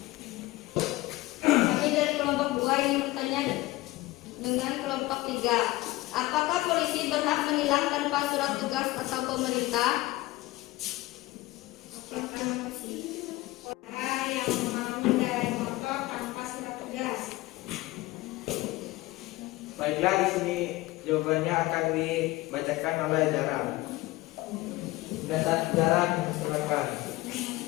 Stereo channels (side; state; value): right; quieter; 19.4 dB